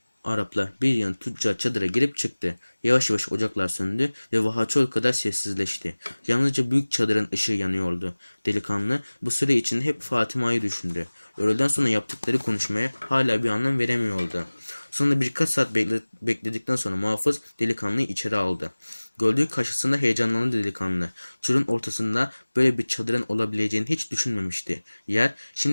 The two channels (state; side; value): inverted; both; correlation -1.00